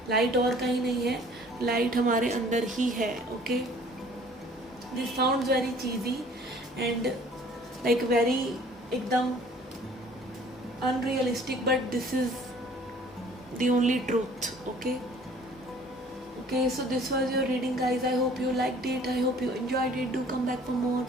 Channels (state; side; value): normal; both; correlation 0.53